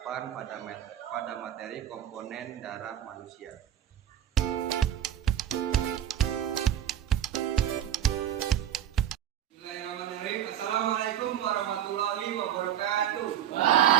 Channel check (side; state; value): left; quieter; 10.5 dB